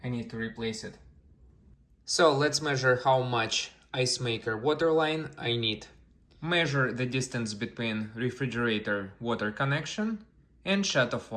I need to replace it. So let's measure how much ice maker water line I need. Measure the distance between refrigerator water connection and shutoff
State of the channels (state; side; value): identical; both; correlation 1.00